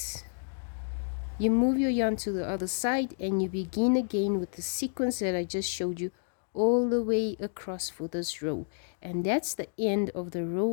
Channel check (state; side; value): silent; right; digital silence